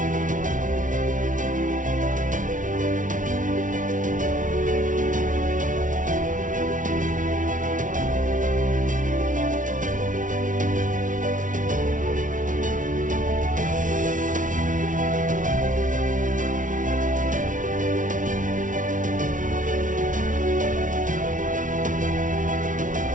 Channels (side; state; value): left; late; 0.38 ms